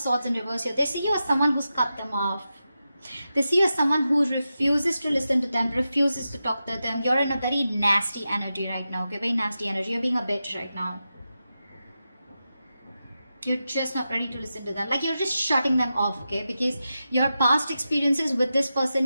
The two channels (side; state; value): both; inverted; correlation -0.91